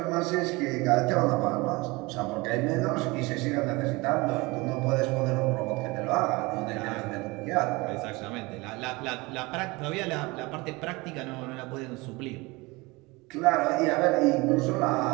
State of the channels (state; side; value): quieter; left; 23.9 dB